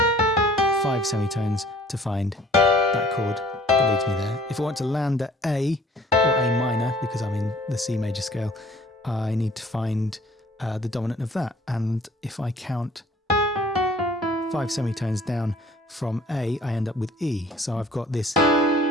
5 semitones to find that chord that leads me there. If I want to land at A or A minor, because I'm in the C major scale, I need to find the dominant of that. And if I count 5 semitones down from A, I end up with E. So I've got this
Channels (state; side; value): normal; both; correlation 0.54